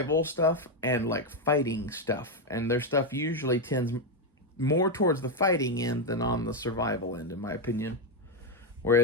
stuff and, like, fighting stuff. And their stuff usually tends more towards the fighting end than on the survival end, in my opinion.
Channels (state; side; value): normal; both; correlation 0.05